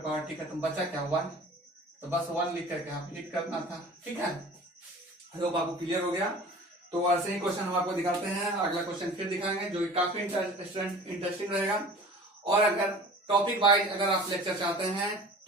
टी खत्म, बचा क्या, 1। तो बस 1 लिख करके आप हिट करना था, ठीक है। होप आपको क्लियर हो गया। तो ऐसे ही क्वेश्चन हम आपको दिखाते हैं। अगला क्वेश्चन फिर दिखाएंगे जो कि काफी इंटरेस्टिंग रहेगा। और अगर टॉपिक वाइज अगर आप लेक्चर चाहते हैं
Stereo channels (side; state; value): both; normal; correlation 0.43